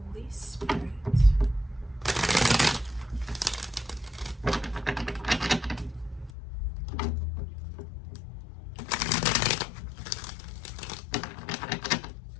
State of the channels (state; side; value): drops out; right; at 6.3 s